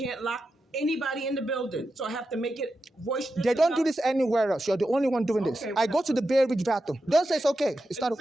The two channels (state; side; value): normal; both; correlation 0.89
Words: lock anybody in the building. So I have to make it voice. They don't do this anywhere else. You're the only one doing this. Okay, I go to the Bay Ridge bathroom. Don't say it's okay. It's not